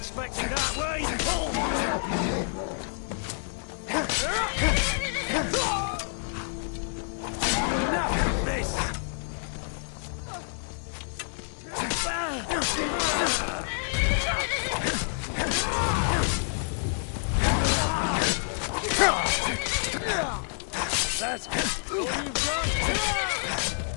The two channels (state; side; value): silent; right; digital silence